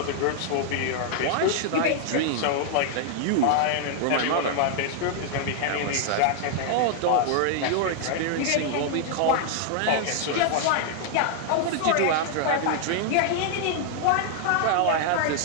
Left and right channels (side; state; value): both; different; correlation 0.00